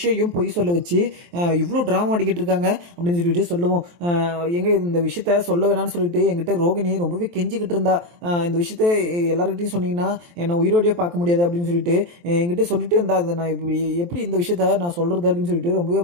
பொய் சொல்ல வச்சு இவ்வளோ ட்ராமா ஆடிக்கிட்டு இருக்காங்க அப்படின்னு சொல்லிட்டு சொல்லுவோம். எங்கே இந்த விஷயத்த சொல்ல வேணான்னு சொல்லிட்டு எங்கிட்ட ரோகிணி ரொம்பவே கெஞ்சிக்கிட்டு இருந்தா, இந்த விஷயத்த எல்லாருக்கும் சொன்னீங்கன்னா என்னை உயிரோடையே பார்க்க முடியாது அப்படின்னு சொல்லிட்டு என்கிட்ட சொல்லிட்டு இருந்தா. அதை நான் எப்படி இந்த விஷயத்த நான் சொல்கிறது அப்படின்னு சொல்லிட்டு ரொம்பவே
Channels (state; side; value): late; left; 23 ms